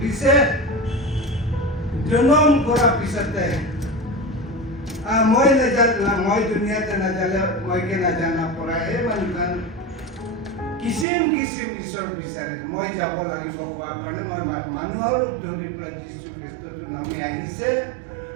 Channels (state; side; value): drops out; left; at 11.1 s